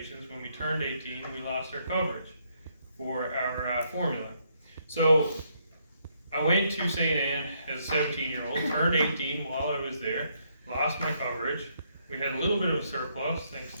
when we turned 18, we lost our coverage for our formula. So I went to St. Anne as a 17-year-old, turned 18 while I was there, lost my coverage. We had a little bit of a surplus thanks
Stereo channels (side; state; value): both; inverted; correlation -0.73